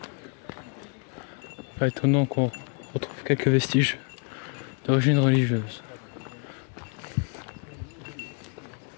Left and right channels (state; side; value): quieter; right; 39.2 dB